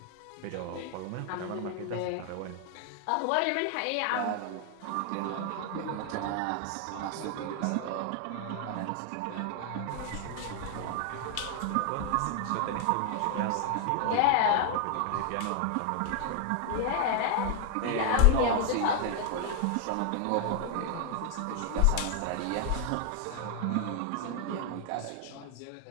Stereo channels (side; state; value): both; different; correlation 0.00